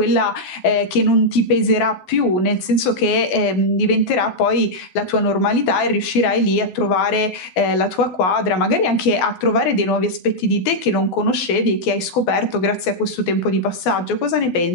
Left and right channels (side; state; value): right; late; 12 ms